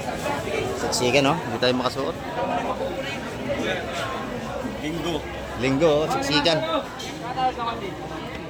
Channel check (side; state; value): both; identical; correlation 1.00